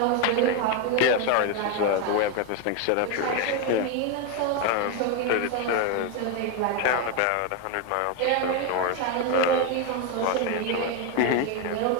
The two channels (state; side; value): different; both; correlation 0.02